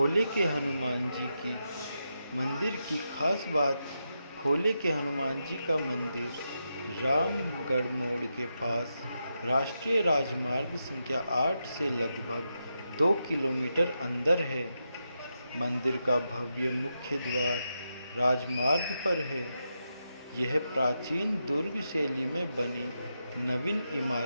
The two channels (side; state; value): both; inverted; correlation -0.86